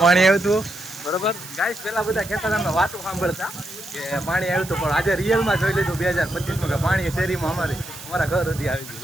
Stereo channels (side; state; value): right; noise; hiss, 14 dB below the sound